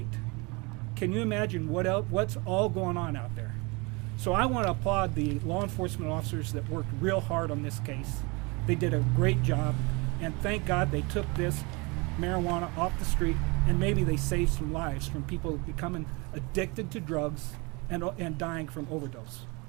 Can you imagine what's all going on out there? So I want to applaud the law enforcement officers that worked real hard on this case. They did a great job, and thank God they took this marijuana off the street, and maybe they save some lives from people becoming addicted to drugs and dying from overdose.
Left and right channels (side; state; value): left; quieter; 27.8 dB